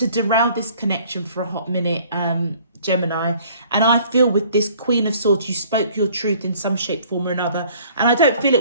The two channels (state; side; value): inverted; both; correlation -0.55